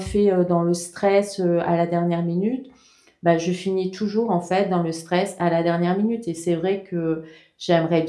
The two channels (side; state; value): both; identical; correlation 1.00